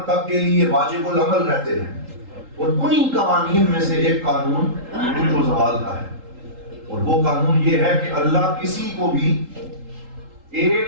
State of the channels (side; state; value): left; late; 3.8 ms